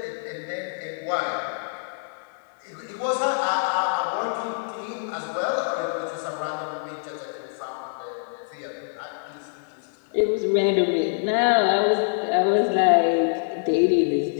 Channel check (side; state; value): right; silent; digital silence